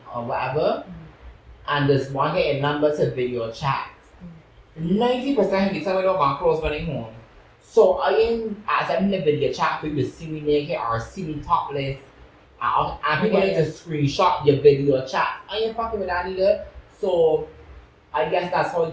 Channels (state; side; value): identical; both; correlation 1.00